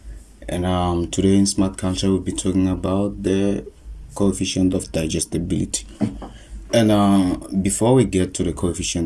And today in Smart Culture, we'll be talking about the coefficient of digestibility. And before we get to the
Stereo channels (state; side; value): identical; both; correlation 1.00